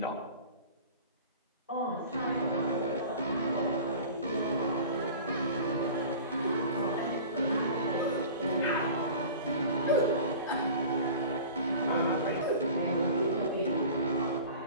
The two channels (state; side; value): inverted; both; correlation -0.40